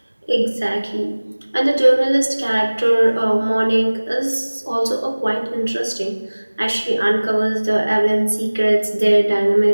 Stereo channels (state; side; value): inverted; both; correlation -1.00